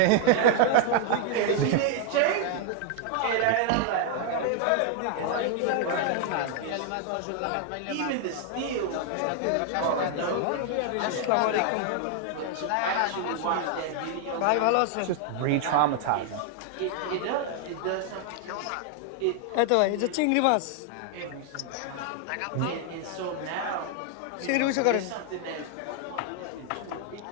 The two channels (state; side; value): different; both; correlation 0.00